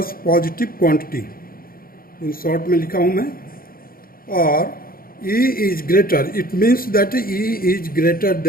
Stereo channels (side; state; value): right; late; 0.42 ms